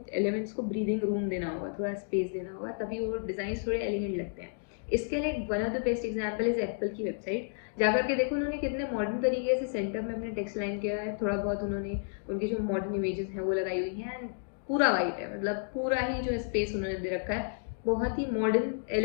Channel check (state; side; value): silent; right; digital silence